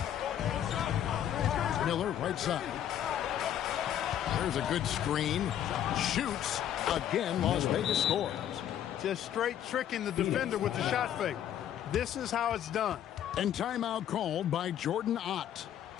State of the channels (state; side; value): quieter; right; 10.6 dB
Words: Miller, right side. There's a good screen. Shoots. Again, Las Vegas scores. Just straight tricking the defender with the shot fake. This is how it's done. And timeout called by Jordan Ott.